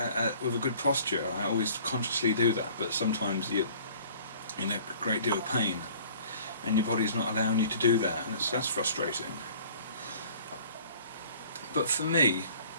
with a good posture. I always consciously do that, but sometimes you're in a great deal of pain and your body's not allowing you to do that, and that's frustrating. But for me,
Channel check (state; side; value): inverted; both; correlation -0.51